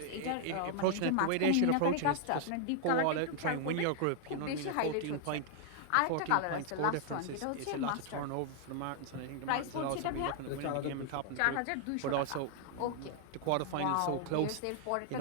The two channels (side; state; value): both; different; correlation 0.00